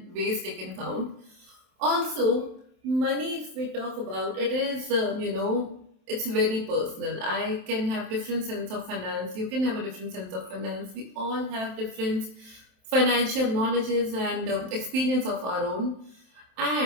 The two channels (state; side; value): late; left; 27 ms